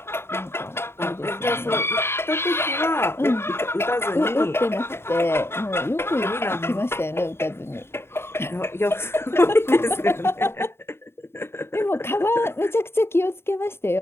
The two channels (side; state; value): right; late; 0.12 ms